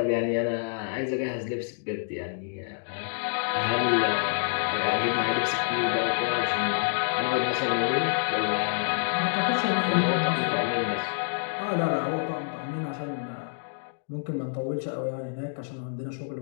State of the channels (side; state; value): right; silent; digital silence